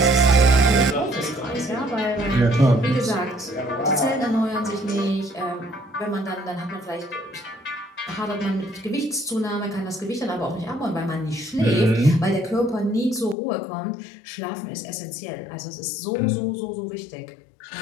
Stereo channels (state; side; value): drops out; right; at 13.4 s